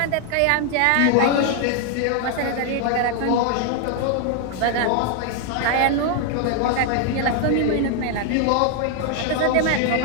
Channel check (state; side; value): different; both; correlation 0.00